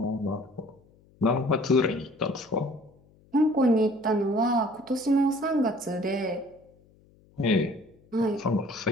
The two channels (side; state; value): left; noise; hum, 30 dB below the sound